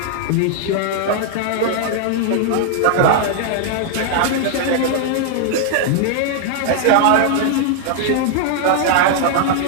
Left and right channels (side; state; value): both; different; correlation 0.00